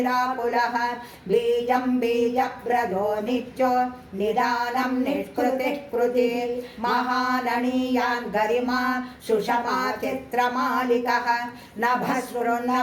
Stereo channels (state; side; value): identical; both; correlation 1.00